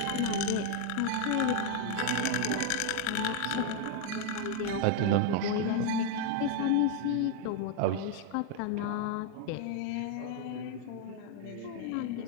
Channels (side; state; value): both; different; correlation 0.00